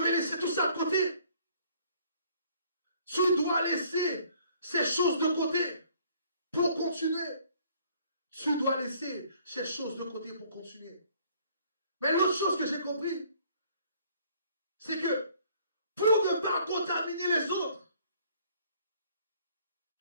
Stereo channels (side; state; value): both; inverted; correlation -0.59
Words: laisser tout ça de côté. Tu dois laisser ces choses de côté pour continuer. Tu dois laisser ces choses de côté pour continuer. Mais l'autre chose que j'ai compris, c'est que pour ne pas contaminer les autres,